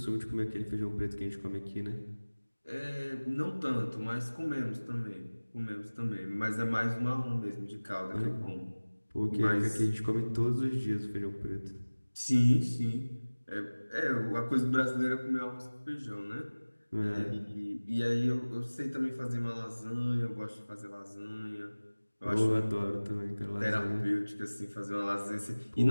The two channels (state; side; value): inverted; both; correlation -1.00